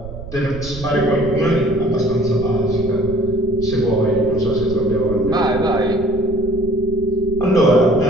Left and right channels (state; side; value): noise; right; rumble, 12 dB below the sound